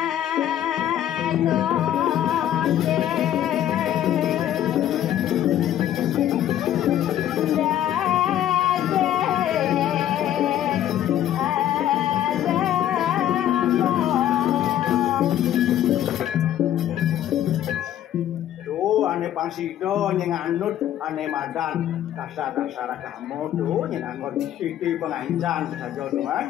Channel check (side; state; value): right; quieter; 11.6 dB